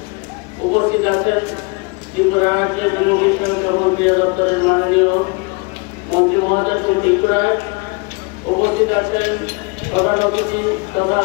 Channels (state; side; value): quieter; right; 30.1 dB